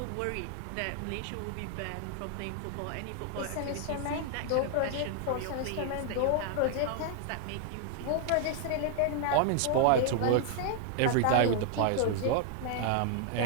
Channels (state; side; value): different; both; correlation 0.00